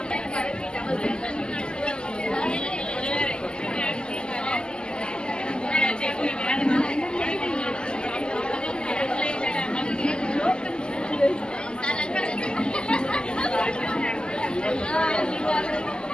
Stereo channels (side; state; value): right; late; 0.047 ms